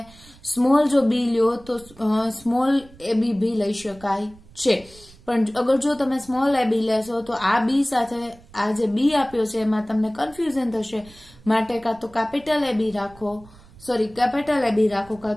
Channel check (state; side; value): noise; right; rumble, 24 dB below the sound